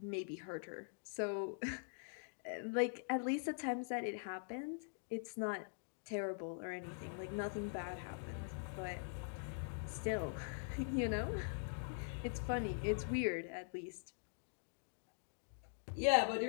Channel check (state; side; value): silent; right; digital silence